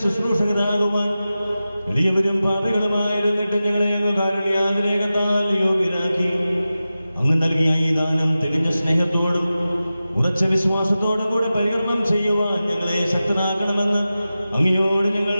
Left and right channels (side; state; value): both; inverted; correlation -0.94